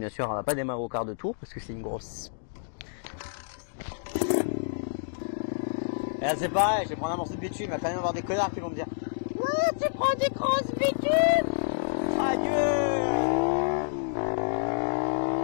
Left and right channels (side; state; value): right; silent; digital silence